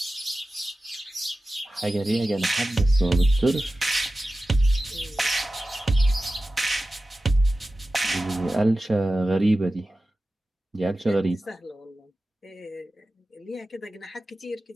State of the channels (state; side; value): normal; both; correlation 0.94